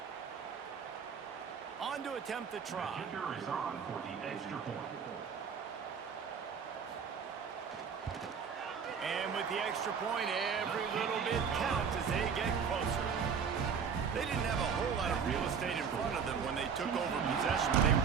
On to attempt the try. The kicker is on for the extra point. And with the extra point, every little bit counts as they get closer. They didn't have a whole lot of real estate in front of them when they took over possession, but they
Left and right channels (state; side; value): quieter; left; 6.6 dB